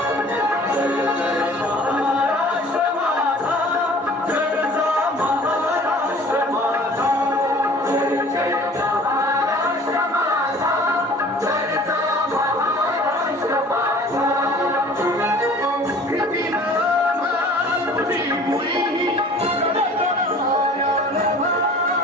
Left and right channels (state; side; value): normal; both; correlation 0.48